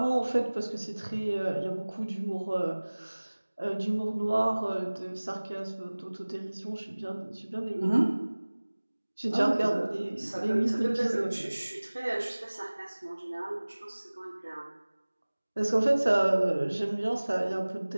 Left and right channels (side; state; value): both; inverted; correlation -1.00